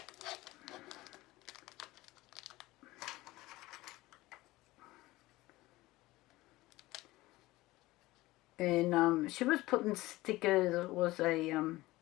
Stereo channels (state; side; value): quieter; right; 18.8 dB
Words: And she was putting stickers, it was a